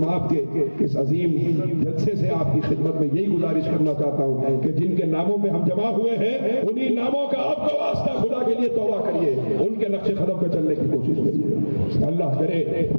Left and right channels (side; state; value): both; inverted; correlation -1.00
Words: کے اس عظیم جلسے سے آپ کی خدمت میں یہی گزارش کرنا چاہتا ہوں کہ جن کے ناموں پہ ہم جمع ہوئے ہیں، انہی ناموں کا آپ کا واسطہ خدا کے لیے توبہ کریے، ان کے نقش قدم پہ چلنے کی کوشش کریے۔ اللہ کرے